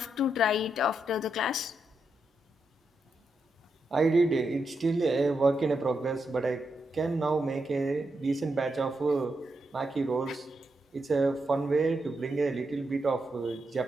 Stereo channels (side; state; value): both; normal; correlation 0.84